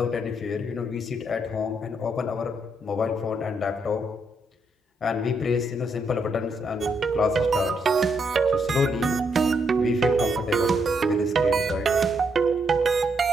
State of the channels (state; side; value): normal; both; correlation 0.77